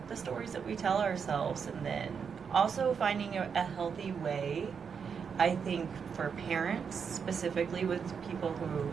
the stories that we tell ourselves, and then also finding a healthy way, I think, for parents, specifically with people who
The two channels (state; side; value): quieter; left; 6.5 dB